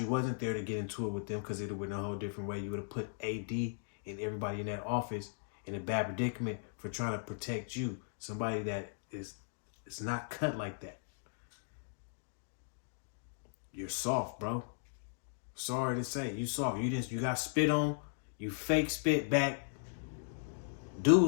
wasn't there to get into it with them, because it would have went a whole different way. You would have put AD and everybody in that office in a bad predicament for trying to protect you. Somebody that is not cut like that. You're soft, bro. Sorry to say, you soft. You got spit on. You fake spit back.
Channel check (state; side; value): silent; right; digital silence